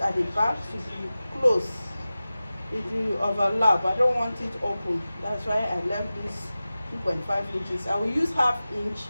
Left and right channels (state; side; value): inverted; both; correlation -0.96